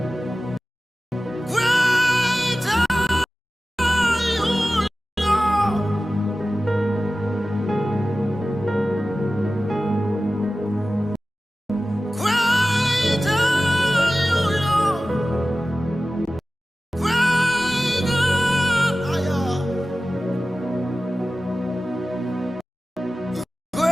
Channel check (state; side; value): normal; both; correlation 0.95